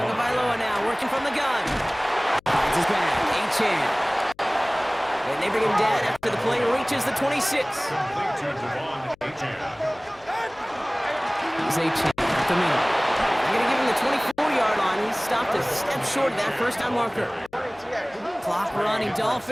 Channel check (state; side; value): noise; left; hum, 30 dB below the sound